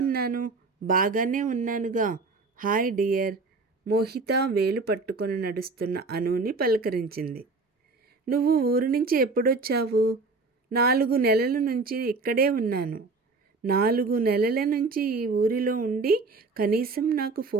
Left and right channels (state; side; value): quieter; left; 3.9 dB